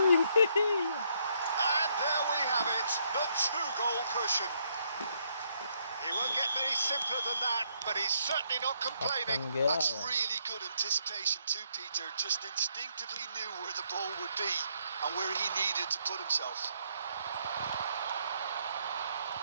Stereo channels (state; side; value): inverted; both; correlation -0.73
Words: And there we have it, the 2-goal cushion. He won't get many simpler than that, but he's certainly not complaining. That's really good anticipation too, Peter. Just instinctively knew where the ball would be and where he needed to put himself.